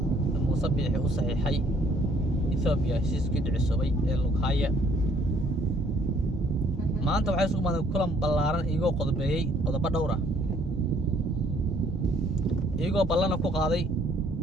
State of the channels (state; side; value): normal; both; correlation 0.63